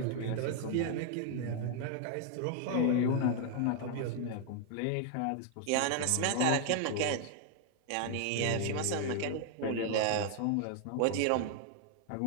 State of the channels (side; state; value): both; different; correlation 0.00